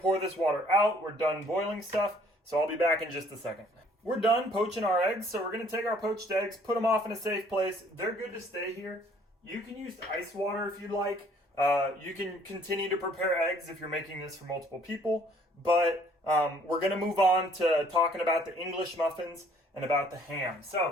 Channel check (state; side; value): normal; both; correlation 0.60